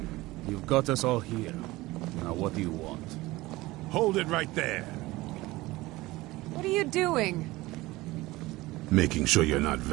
You've got us all here. Now what do you want? Hold it right there. What are you doing? Making sure you're not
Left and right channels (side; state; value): left; quieter; 19.5 dB